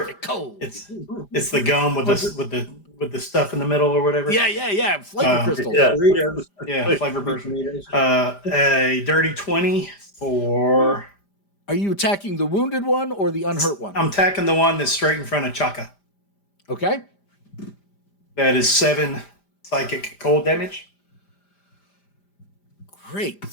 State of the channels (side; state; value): right; late; 5.0 ms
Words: for cold. It's the gum with the stuff in the middle or whatever. Yeah. Flavor crystals. Yeah. Doritos. Yeah, flavor burst. Doritos. A dirty 20 for. Are you attacking the wounded one or the unhurt one? I'm attacking the one that's straight in front of Chaka. Okay. That is 7 psychic cold damage. Great